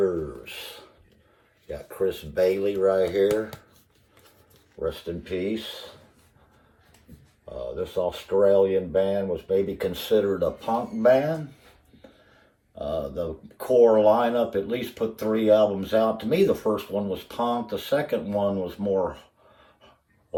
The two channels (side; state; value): both; identical; correlation 1.00